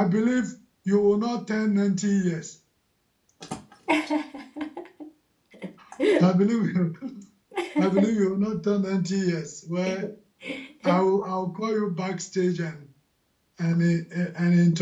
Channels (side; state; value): both; identical; correlation 1.00